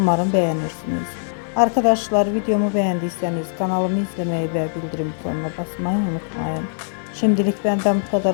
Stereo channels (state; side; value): silent; right; 65 dB below the other